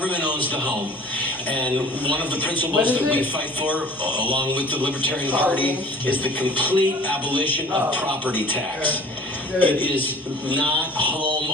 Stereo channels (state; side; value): normal; both; correlation 0.47